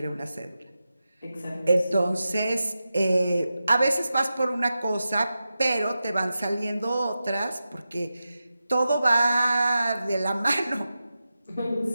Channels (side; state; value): both; inverted; correlation -0.92